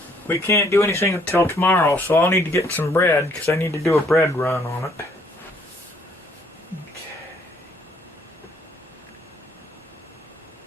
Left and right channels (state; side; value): normal; both; correlation 0.64